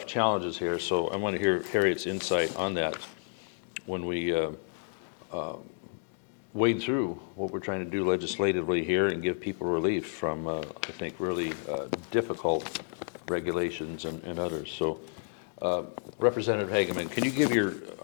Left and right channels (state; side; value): silent; right; digital silence